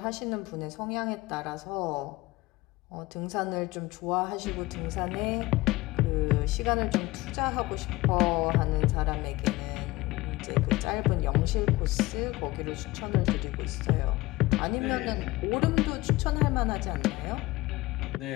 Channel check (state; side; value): quieter; right; 19.6 dB